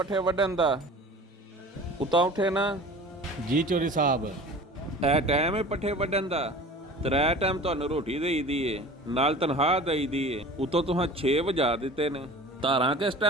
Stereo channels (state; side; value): normal; both; correlation 0.40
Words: ਵੱਢਣ ਦਾ? ਉਤਾਂ ਉੱਠੇ ਨਾ। ਜੀ ਚੋਰੀ ਸਾਹਿਬ। ਇਹ ਟਾਈਮ ਹੈ ਪੱਠੇ ਵੱਢਣ ਦਾ? ਤਰੇ ਟਾਈਮ ਤੁਹਾਨੂੰ ਰੋਟੀ ਦੇਈਦੀ ਏ, ਨਾਲ ਤਨਖਾਹ ਦੇਈਦੀ ਏ, ਉਤੋਂ ਤੁਹਾਂ 6 ਵਜਾ ਦਿੱਤੇ ਨੇ। ਧਾਰਾਂ ਕਿਸ